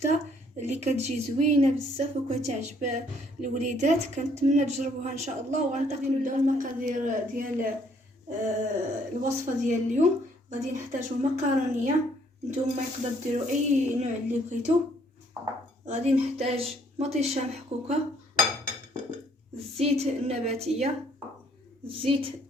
اللي كتجي زوينه بزاف وكتعجب الوليدات. كنتمنى تجربوها ان شاء الله. وغنبداو نبداو المقادير ديال الوصفه ديال اليوم. غادي نحتاجو مقارونيه، نتوما يقدر ديروا اي نوع اللي بغيتو. غادي نحتاج مطيشه محكوكه، الزيت النباتيه، الزيت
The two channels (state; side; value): normal; both; correlation 0.65